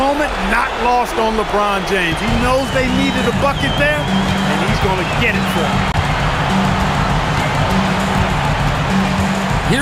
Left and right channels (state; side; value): identical; both; correlation 1.00